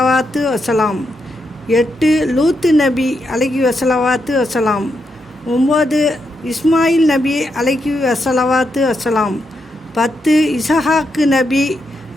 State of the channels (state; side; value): normal; both; correlation 0.82